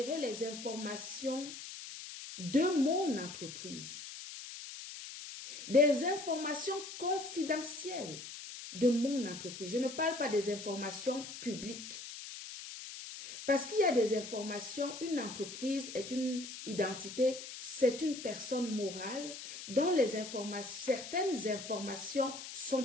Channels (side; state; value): left; noise; hiss, 10 dB below the sound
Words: les informations de mon entreprise. Des informations confidentielles de mon entreprise. Je ne parle pas des informations publiques. Parce qu'il y a des informations, une entreprise est une identité, c'est une personne morale dont certaines informations